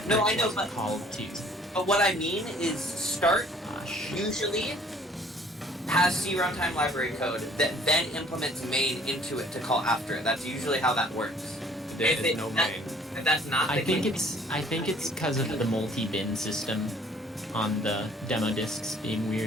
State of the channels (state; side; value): normal; both; correlation 0.56